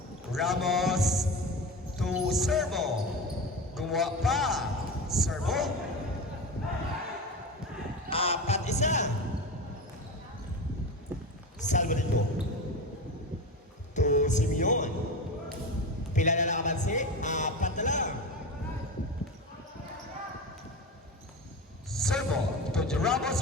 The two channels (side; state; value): both; normal; correlation 0.25